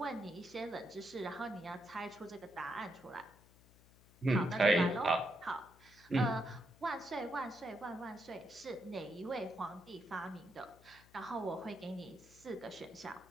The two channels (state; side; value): noise; left; hum, 25 dB below the sound